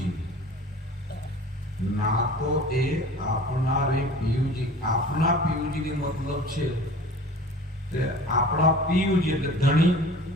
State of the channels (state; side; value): normal; both; correlation 0.42